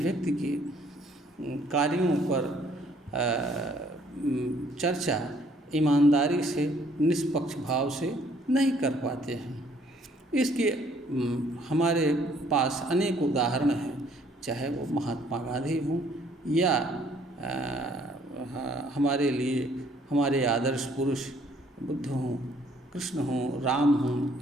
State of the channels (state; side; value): normal; both; correlation 0.62